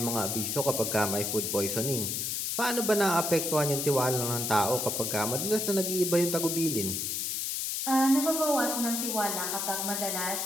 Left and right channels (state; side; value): noise; left; hiss, 1 dB below the sound